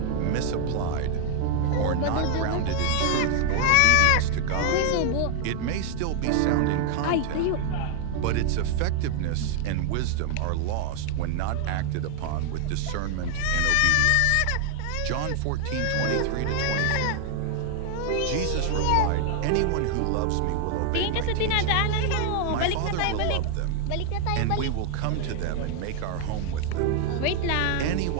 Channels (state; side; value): different; both; correlation 0.00